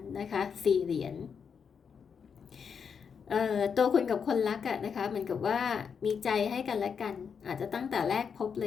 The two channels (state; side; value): quieter; right; 6.5 dB